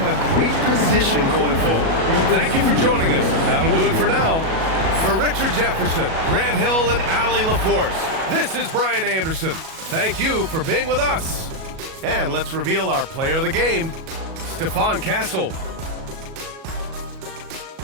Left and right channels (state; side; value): late; left; 37 ms